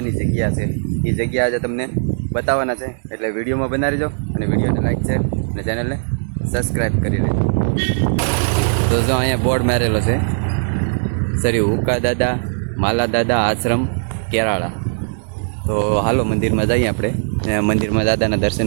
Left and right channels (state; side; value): silent; left; digital silence